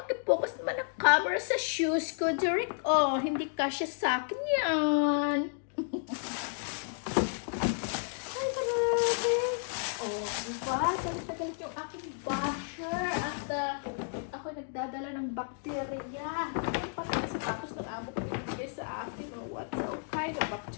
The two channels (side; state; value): right; silent; digital silence